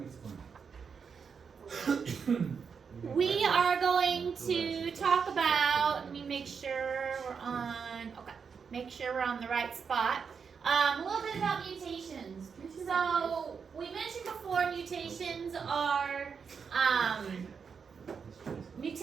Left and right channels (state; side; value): quieter; left; 6.1 dB